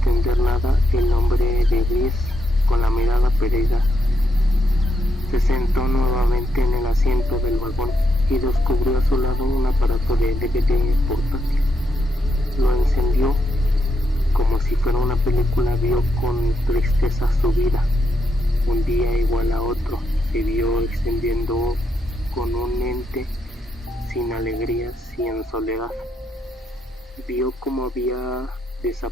nada, el hombre de gris, con la mirada perdida, se sentó nuevamente en el asiento del vagón y descubrió a su lado un aparato de DVD portátil. Lo encendió. Como si fuera una película, vio con tristeza su vida. Un día igual a otro se vio extendiendo con un ente sin alegrías y en soledad. Vio cómo había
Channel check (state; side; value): normal; both; correlation 0.80